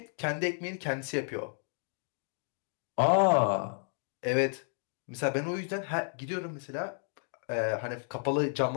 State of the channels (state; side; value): silent; right; 56 dB below the other